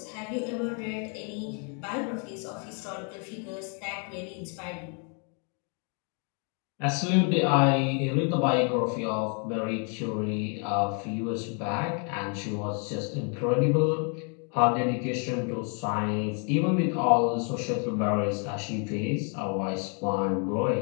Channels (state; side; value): quieter; right; 39.0 dB